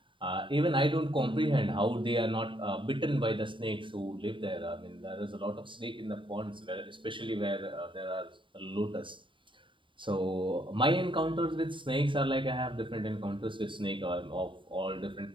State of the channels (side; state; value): left; late; 0.24 ms